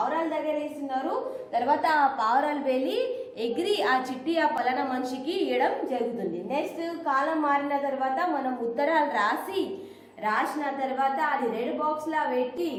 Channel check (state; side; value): identical; both; correlation 1.00